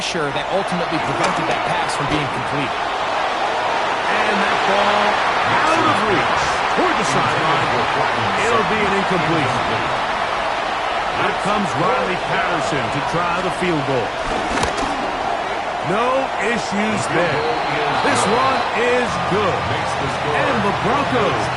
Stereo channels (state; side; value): identical; both; correlation 1.00